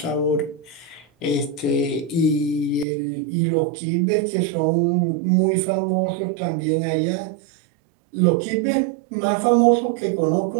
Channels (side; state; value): left; drops out; at 2.9 s